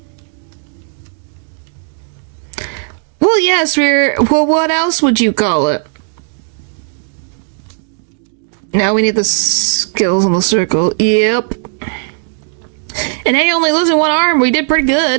Well, yes, well, what else would you call it? Now we need the skills in the circle. Yep. And hey, only losing one arm, we did pretty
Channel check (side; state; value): left; silent; digital silence